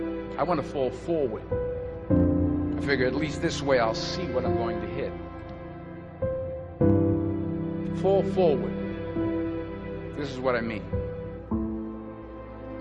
I want to fall forward. I figure at least this way I'll see what I'm going to hit. Fall forward. This is what I mean.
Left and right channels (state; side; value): identical; both; correlation 1.00